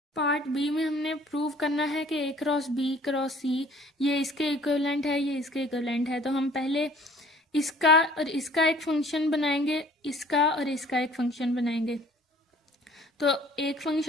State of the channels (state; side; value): normal; both; correlation 0.54